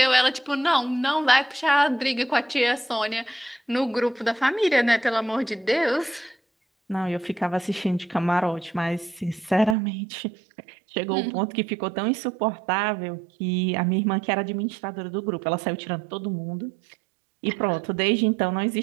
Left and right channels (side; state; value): left; drops out; at 9.8 s